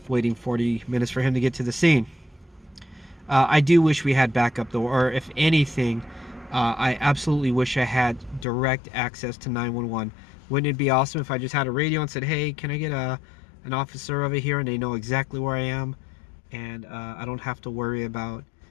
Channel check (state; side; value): drops out; right; at 8.5 s